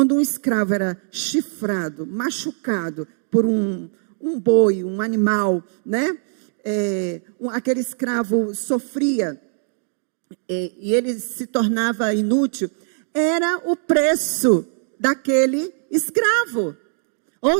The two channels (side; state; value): left; silent; digital silence